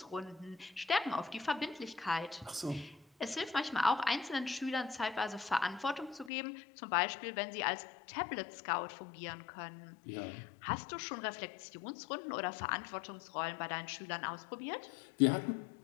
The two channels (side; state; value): right; drops out; at 6.3 s